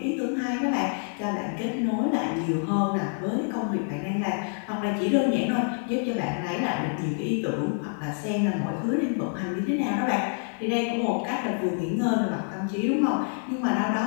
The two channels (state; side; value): silent; right; 56 dB below the other